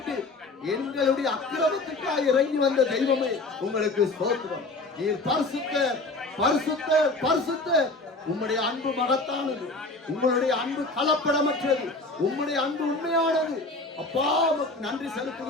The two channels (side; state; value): right; quieter; 3.1 dB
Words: எங்களுடைய அக்கிரமத்துக்காக இறங்கி வந்த தெய்வமே உங்களுக்கு ஸ்தோத்திரம். நீர் பரிசுத்தர், பரிசுத்தர், பரிசுத்தர். உம்முடைய அன்பு மகத்தானது, உங்களுடைய அன்பு கலப்படமற்றது, உம்முடைய அன்பு உண்மையானது. அப்பா உமக்கு நன்றி